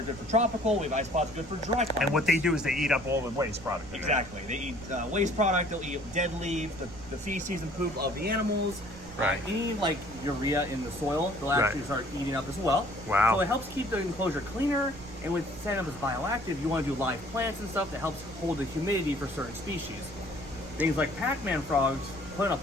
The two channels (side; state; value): right; noise; rumble, 16 dB below the sound